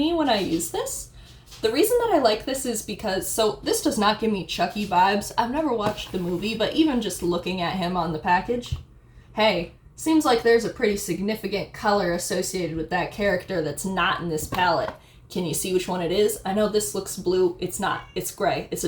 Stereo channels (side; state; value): both; identical; correlation 1.00